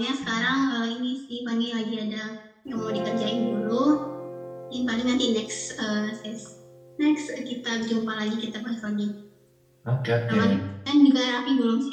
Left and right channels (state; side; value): identical; both; correlation 1.00